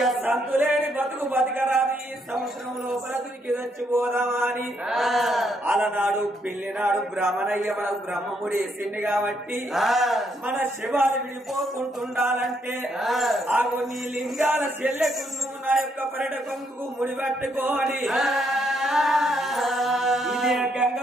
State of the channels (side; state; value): both; normal; correlation 0.74